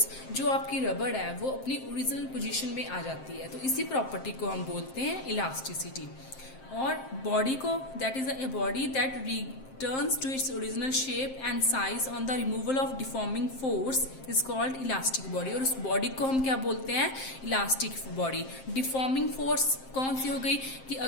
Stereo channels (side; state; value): right; late; 7.6 ms